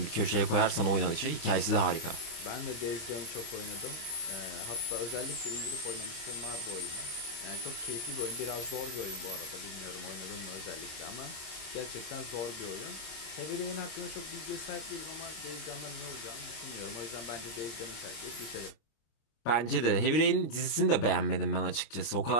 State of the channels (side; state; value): right; late; 26 ms